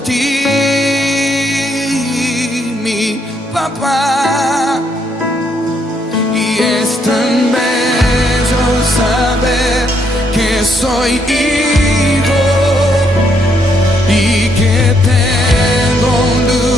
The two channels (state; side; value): normal; both; correlation 0.73